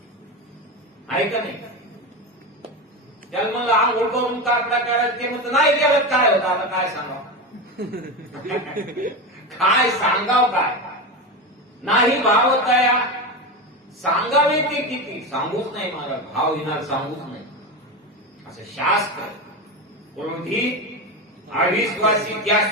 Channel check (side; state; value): both; normal; correlation 0.19